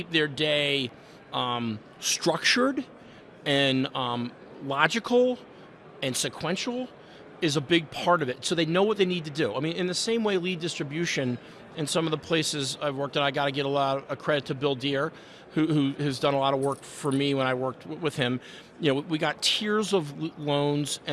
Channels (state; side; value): identical; both; correlation 1.00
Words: their day structured and logical and sequential is a big part of it. So they know what they need to do. I mean, in the same way lead distribution in some of the places I've worked at, I got to get a lot of credit to Bill Deere, who has done a lot of work for me when I worked with him. We got tiers of loans